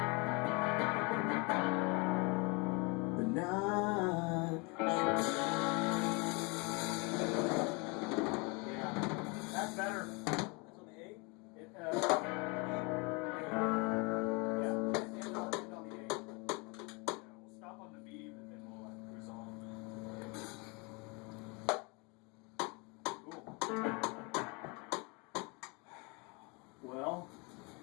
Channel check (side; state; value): right; quieter; 29.8 dB